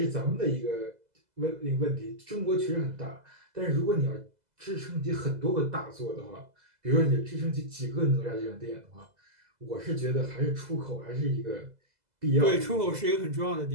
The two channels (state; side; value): late; left; 2.0 ms